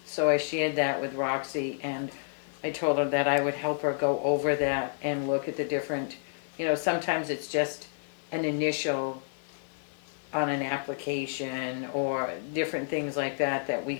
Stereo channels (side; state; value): right; silent; digital silence